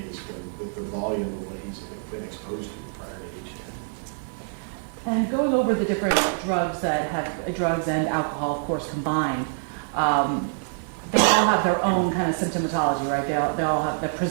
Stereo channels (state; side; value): silent; left; digital silence